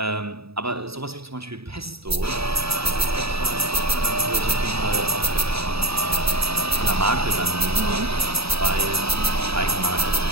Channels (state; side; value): late; left; 0.77 ms